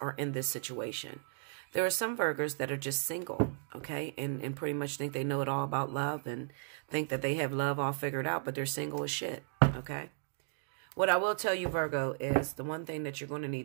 in this situation. There are some Virgos that are just single, okay, and pretty much think they know it all about love and think that they have love all figured out, but they're single as shit, okay? What I will tell you, Virgo, is the one thing that you're going to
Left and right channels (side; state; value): left; silent; digital silence